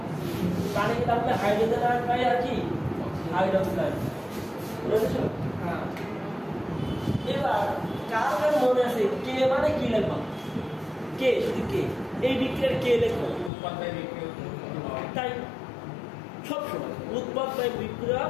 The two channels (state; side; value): drops out; right; at 13.5 s